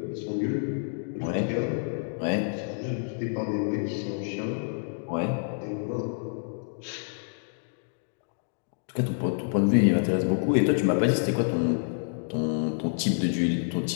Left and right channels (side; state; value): right; silent; digital silence